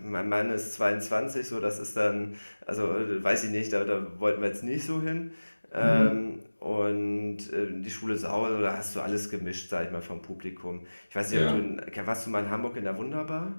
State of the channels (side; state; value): both; inverted; correlation -1.00